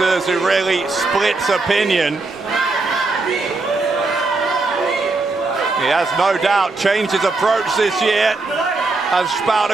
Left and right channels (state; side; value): quieter; left; 3.5 dB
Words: who really splits opinion. He has no doubt changed his approach this year as